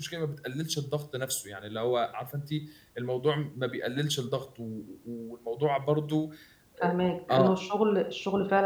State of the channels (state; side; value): identical; both; correlation 1.00